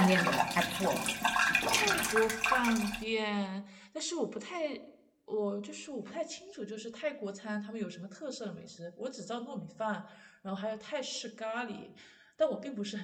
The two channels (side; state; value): both; identical; correlation 1.00